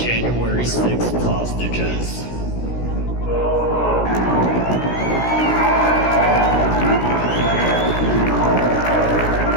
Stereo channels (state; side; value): late; right; 16 ms